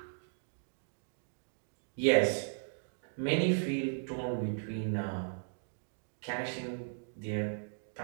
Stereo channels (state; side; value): silent; left; digital silence